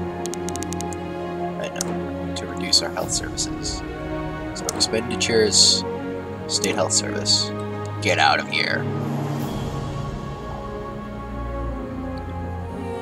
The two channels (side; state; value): both; identical; correlation 1.00